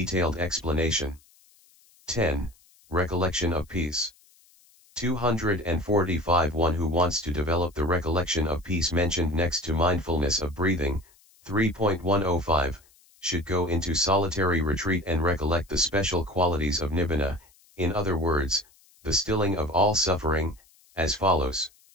explanation. 10. Recollection of peace. 245 One who wants to develop the recollection of peace mentioned next to mindfulness of breathing, 3.105, should go into solitary retreat and recollect the special qualities of nibbana, in other words, the stilling of all suffering, as follows.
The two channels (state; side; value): noise; left; hiss, 29 dB below the sound